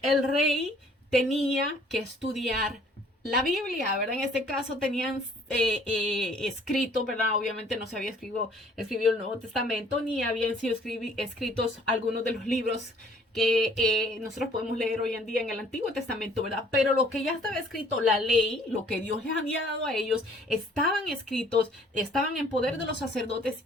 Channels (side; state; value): both; normal; correlation 0.58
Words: el rey tenía que estudiar la Biblia, ¿verdad? En este caso tenían escrito, ¿verdad? Obviamente no se había escrito el Nuevo Testamento, ni habían sido escritos algunos de los libros que nosotros podemos leer hoy en día en el Antiguo Testamento, ¿verdad? Pero lo que ya estaba escrito, la ley, lo que Dios les había dado a ellos, estaban escritos, estaban en poder de los sacerdotes,